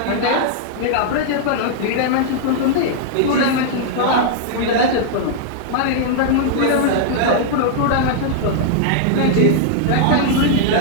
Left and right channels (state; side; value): different; both; correlation -0.01